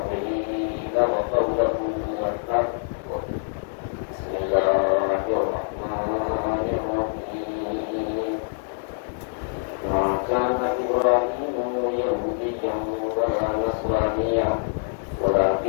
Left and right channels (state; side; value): silent; right; digital silence